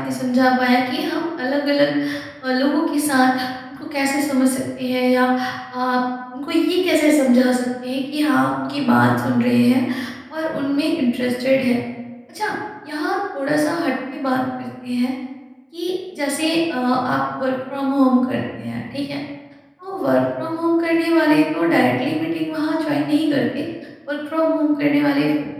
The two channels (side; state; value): both; identical; correlation 1.00